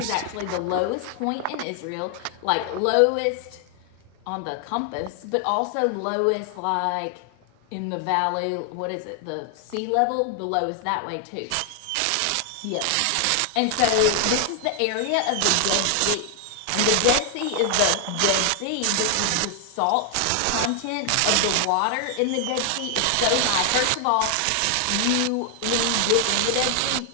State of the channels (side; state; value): both; different; correlation 0.00